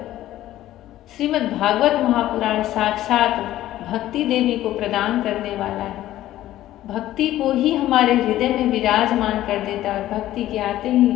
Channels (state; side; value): quieter; right; 14.1 dB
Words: श्रीमद् भागवत महापुराण साक्षात भक्ति देवी को प्रदान करने वाला है। भक्ति को ही हमारे हृदय में विराजमान कर देता है, भक्ति के आते ही